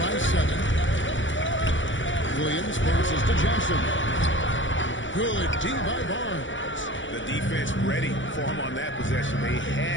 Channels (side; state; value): right; late; 0.56 ms